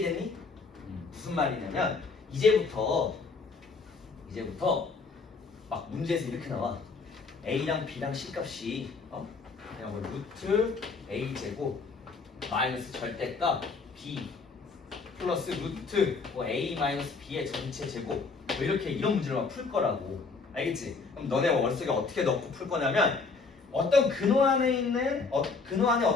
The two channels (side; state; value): right; quieter; 4.5 dB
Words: 무슨 말이냐면 이제부터 막 문제에서 이렇게 나와. a랑 b랑 c값이 그냥 뭐 루트 a 제곱 마이너스 절대값 b 플러스 루트 뭐 a 마이너스 b의 전체 제곱 뭐 이렇게 이런 문제를 막 풀 거라고. 알겠지? 그럼 너네 머릿속에 어떻게 넣고 풀 거냐면 어떤 근호 안에 있는 근호 안에